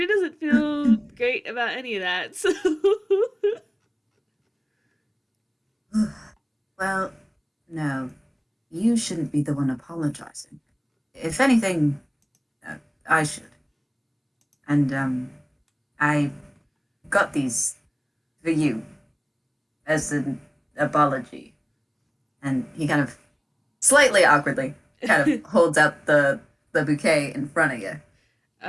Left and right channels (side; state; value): both; identical; correlation 1.00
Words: doesn't feel great about any of that. So well, no, you shouldn't be the one apologizing. If anything, uh, I should. And, I got these for you as an apology. And he kind of slightly awkwardly kind of holds out the bouquet in front of you.